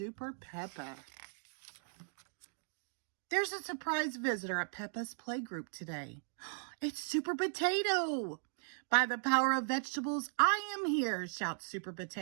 Peppa. There's a surprise visitor at Peppa's playgroup today. It's Super Potato. By the power of vegetables, I am here, shouts Super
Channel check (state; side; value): silent; left; digital silence